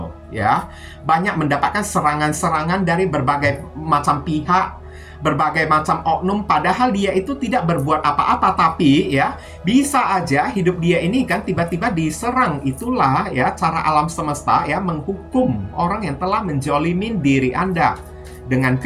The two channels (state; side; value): identical; both; correlation 1.00